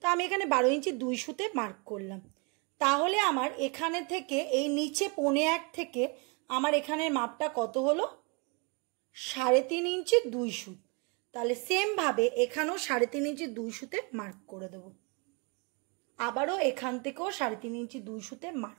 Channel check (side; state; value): left; quieter; 32.4 dB